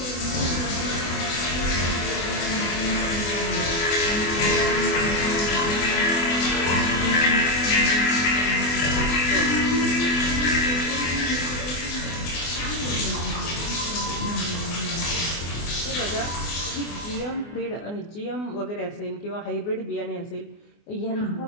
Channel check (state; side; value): late; right; 24 ms